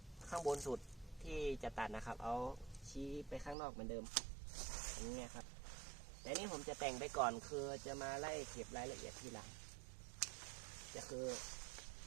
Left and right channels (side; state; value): left; drops out; at 3.6 s